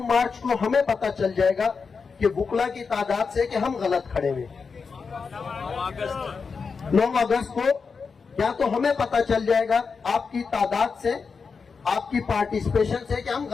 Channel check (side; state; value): right; quieter; 5.2 dB